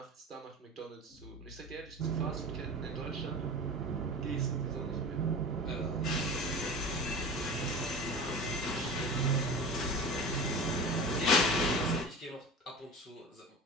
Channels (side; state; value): both; normal; correlation 0.34